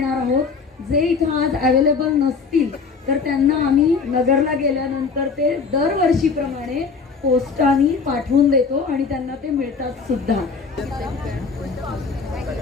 आहोत. जे इथं आज अवेलेबल नसतील तर त्यांना आम्ही नगरला गेल्यानंतर ते दरवर्षीप्रमाणे पोस्टाने पाठवून देतो आणि त्यांना ते मिळतात सुद्धा.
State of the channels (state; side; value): quieter; right; 5.0 dB